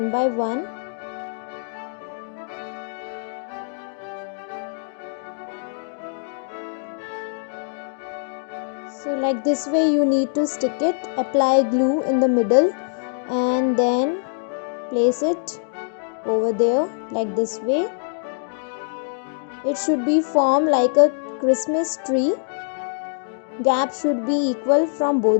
by one. So like this way you need to stick it, apply glue in the middle and then place it over there like this way. It should be formed like a Christmas tree. Gap should be equal from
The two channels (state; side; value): silent; right; digital silence